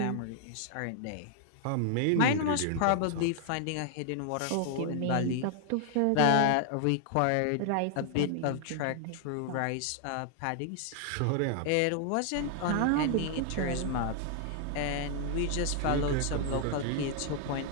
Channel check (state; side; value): different; both; correlation 0.00